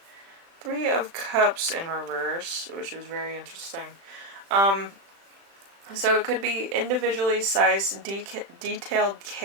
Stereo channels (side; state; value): left; late; 36 ms